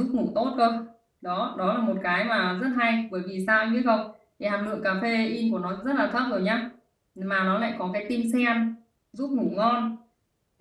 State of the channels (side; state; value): both; identical; correlation 1.00